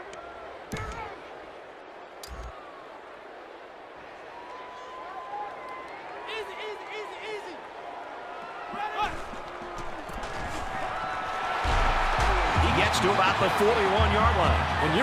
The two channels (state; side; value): identical; both; correlation 1.00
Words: To about the 41-yard line. When